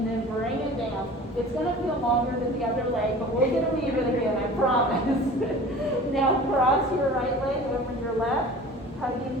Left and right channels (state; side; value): normal; both; correlation 0.41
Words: then bring it down. It's going to feel longer than the other leg, but we're going to leave it again, I promise. Now cross your right leg over your left,